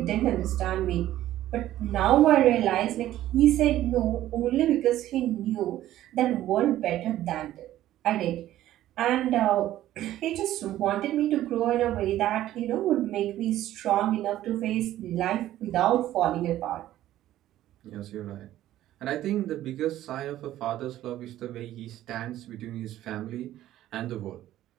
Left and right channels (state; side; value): quieter; left; 13.6 dB